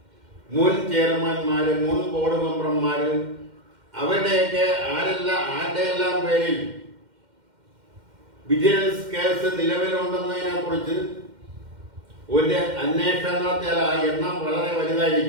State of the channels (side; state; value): left; late; 2.1 ms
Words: മുൻ ചെയർമാൻമാര്, മുൻ ബോർഡ് മെമ്പർമാര്, അവരുടെയൊക്കെ ആരുടെയെല്ലാം പേരിൽ വിജിലൻസ് കേസ് നിലവിലുണ്ടെന്നതിനെ കുറിച്ച് ഒരു അന്വേഷണം നടത്തിയാൽ ആ എണ്ണം വളരെ